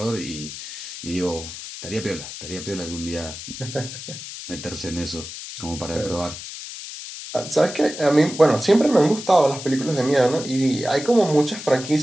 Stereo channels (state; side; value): noise; left; hiss, 10 dB below the sound